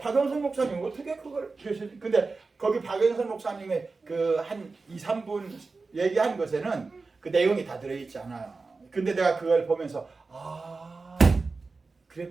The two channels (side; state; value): left; quieter; 4.0 dB